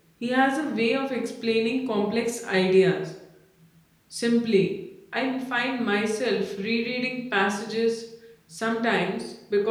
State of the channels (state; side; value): identical; both; correlation 1.00